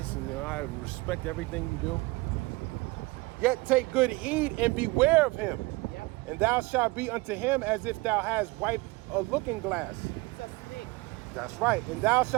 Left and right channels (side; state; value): left; quieter; 23.4 dB